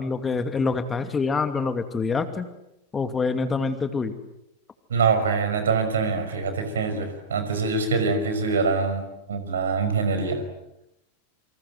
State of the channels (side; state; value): both; normal; correlation -0.02